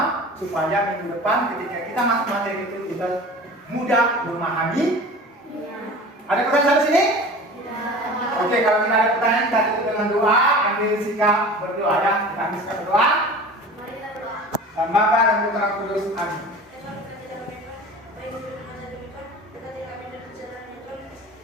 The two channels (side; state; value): both; normal; correlation 0.38